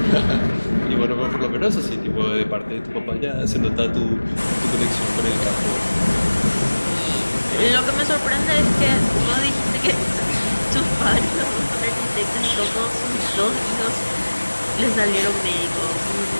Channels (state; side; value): inverted; both; correlation -1.00